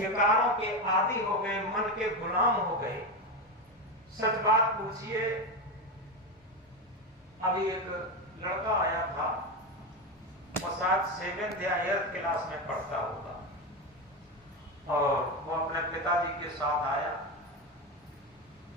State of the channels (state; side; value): normal; both; correlation 0.15